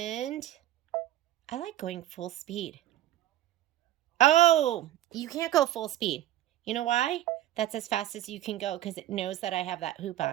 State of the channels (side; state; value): left; quieter; 13.4 dB